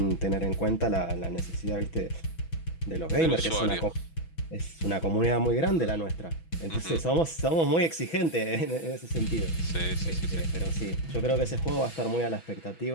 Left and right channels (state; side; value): late; right; 6.1 ms